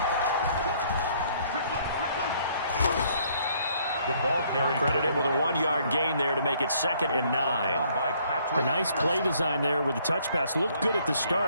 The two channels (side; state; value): both; inverted; correlation -0.64